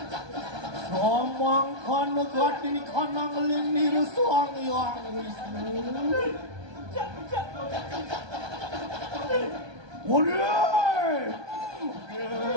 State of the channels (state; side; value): late; left; 1.2 ms